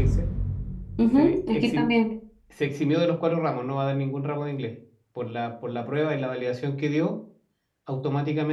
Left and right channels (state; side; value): identical; both; correlation 1.00